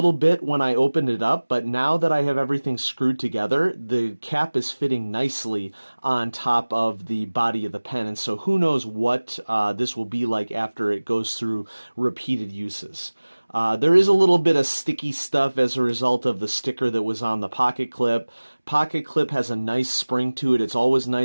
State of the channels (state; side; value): inverted; both; correlation -1.00